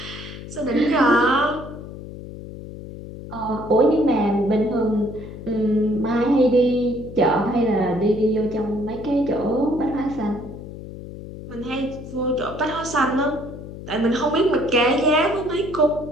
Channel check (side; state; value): left; noise; hum, 12 dB below the sound